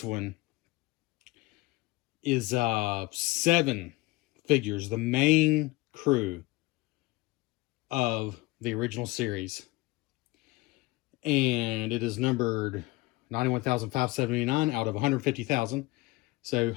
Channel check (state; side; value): quieter; right; 21.2 dB